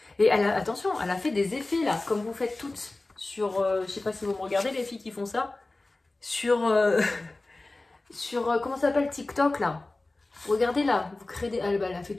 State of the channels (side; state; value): right; quieter; 3.0 dB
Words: Et elle a, attention, elle a fait des effets là, comme vous faites toutes sur, je sais pas si vous me regardez les filles qui font ça, sur... comment ça s'appelle TikTok là. Regardez là, vous créez des... Elle a fait